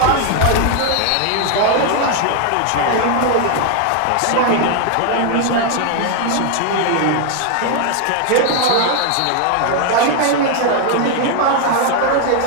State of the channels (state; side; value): different; both; correlation 0.00